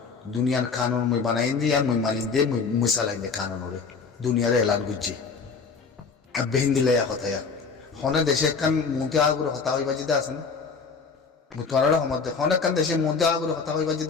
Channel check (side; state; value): right; quieter; 5.1 dB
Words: দুনিয়ার কানুন মই বানাই দিয়ে আর মই মানি দিয়ে মই চালাই দিয়ে কানুন ওরে দুনিয়ারে এলান করছি আর বেহিন দিলে কথায়া হনে দেশে একখান মন্ত্রী আগুরে হতা হইবা যেতে আছে না তোমার সময় হনে একখান দেশে মন্ত্রী আগুরে হতা হইবা